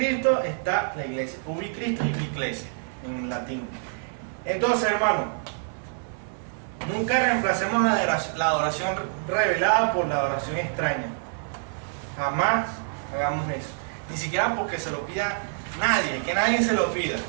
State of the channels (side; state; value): left; silent; digital silence